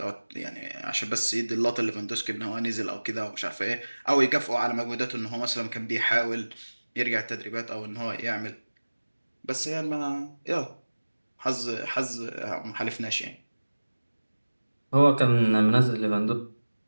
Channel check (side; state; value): both; inverted; correlation -1.00